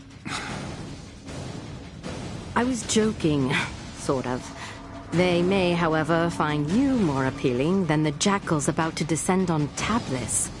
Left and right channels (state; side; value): identical; both; correlation 1.00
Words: I was joking, sort of. They may, however, find you more appealing than the jackals about to descend on Tablis.